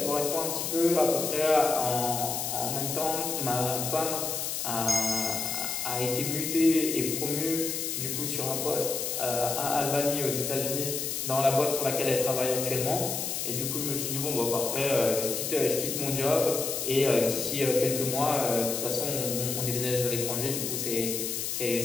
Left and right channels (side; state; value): left; noise; hiss, 2 dB below the sound